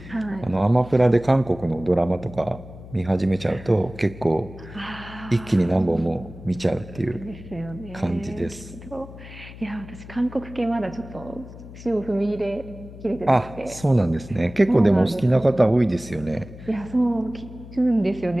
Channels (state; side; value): noise; left; hum, 16 dB below the sound